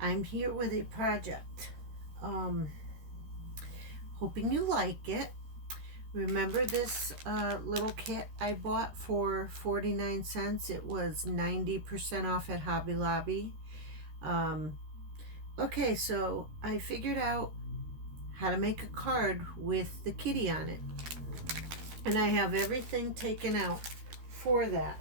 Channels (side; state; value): left; late; 13 ms